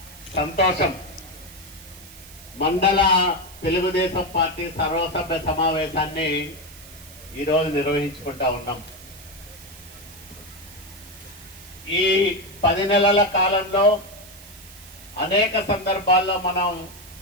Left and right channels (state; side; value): noise; right; hiss, 19 dB below the sound